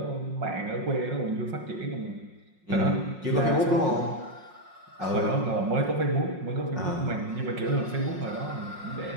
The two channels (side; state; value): left; late; 5.5 ms